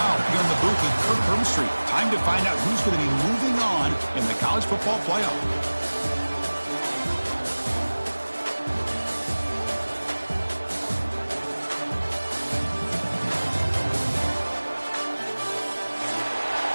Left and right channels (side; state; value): both; inverted; correlation -1.00